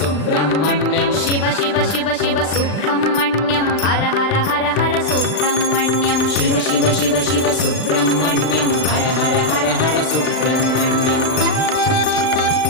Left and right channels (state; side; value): late; right; 39 ms